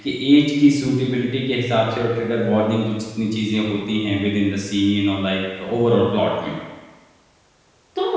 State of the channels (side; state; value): both; identical; correlation 1.00